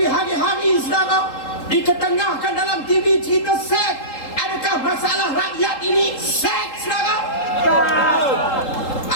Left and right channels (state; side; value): late; right; 3.8 ms